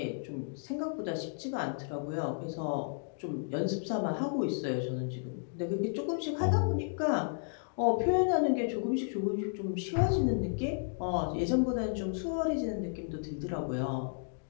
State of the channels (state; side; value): silent; right; digital silence